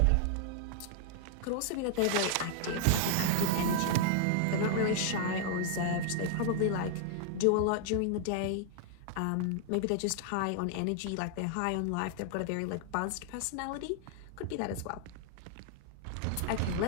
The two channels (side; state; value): both; different; correlation 0.00